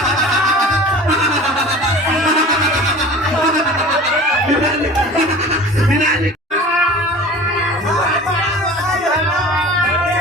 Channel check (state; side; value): normal; both; correlation 0.40